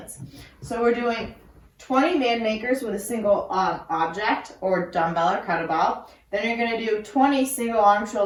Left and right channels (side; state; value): both; identical; correlation 1.00